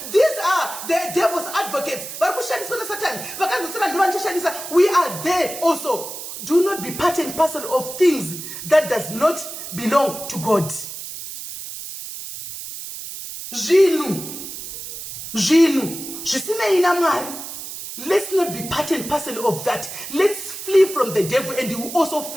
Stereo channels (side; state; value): right; noise; hiss, 9 dB below the sound